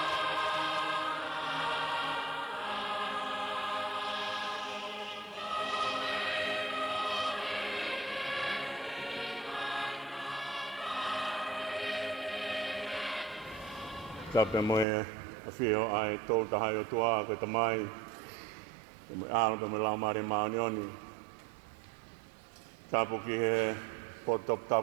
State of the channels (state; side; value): drops out; left; at 14.9 s